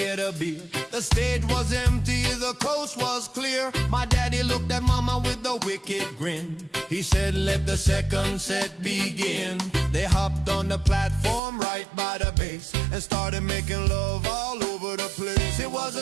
a beer. The stage was empty, the coast was clear. My daddy looked at mama with a wicked grin. He said, let the second set begin. They hopped on the platform right by the bass and started making love all over the place. It was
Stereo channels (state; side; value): drops out; left; at 11.4 s